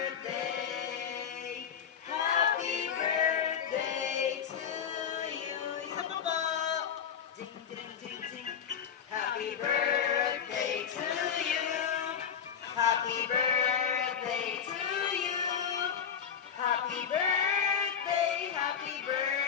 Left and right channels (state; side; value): quieter; right; 7.7 dB